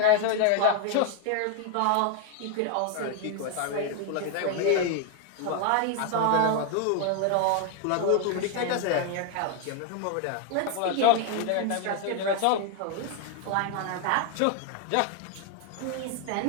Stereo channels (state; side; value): different; both; correlation 0.01